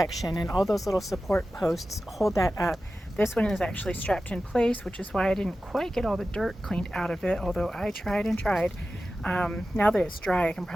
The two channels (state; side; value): normal; both; correlation 0.94